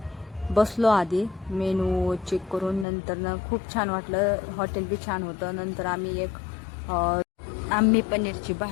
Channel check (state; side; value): drops out; right; at 2.9 s